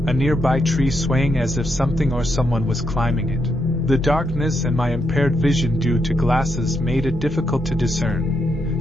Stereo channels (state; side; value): normal; both; correlation 0.80